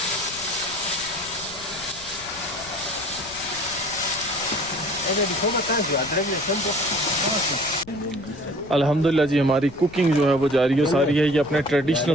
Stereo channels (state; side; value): noise; left; rumble, 19 dB below the sound